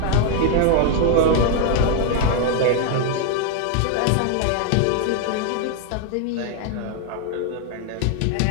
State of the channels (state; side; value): different; both; correlation 0.00